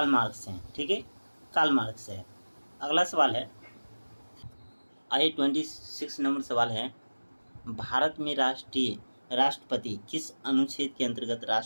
मार्क्स हैं, ठीक है, कार्ल मार्क्स है। अगला सवाल है, आइए 26 नंबर सवाल है, भारत में राष्ट्रपति किस अनुच्छेद के अंतर्गत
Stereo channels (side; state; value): both; inverted; correlation -1.00